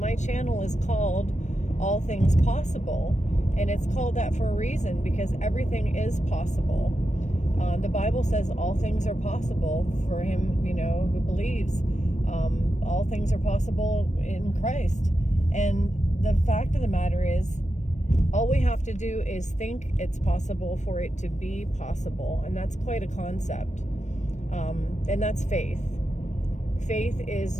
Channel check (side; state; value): right; late; 0.34 ms